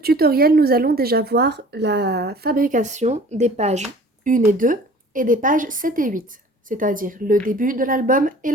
nous allons déjà voir la fabrication des pages 1 et 2 et des pages 7 et 8, c'est-à-dire le début de l'album et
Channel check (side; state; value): both; normal; correlation 0.47